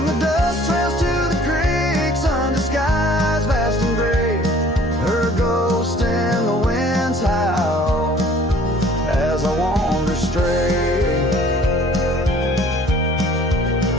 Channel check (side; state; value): both; normal; correlation 0.53